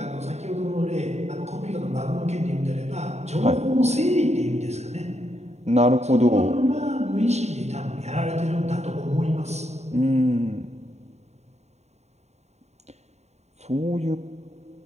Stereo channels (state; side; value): late; left; 0.32 ms